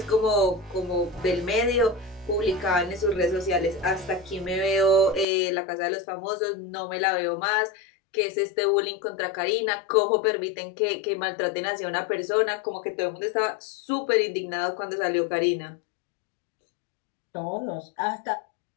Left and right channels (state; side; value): drops out; right; at 5.2 s